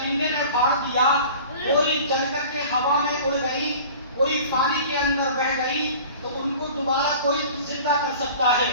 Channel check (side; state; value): both; inverted; correlation -0.42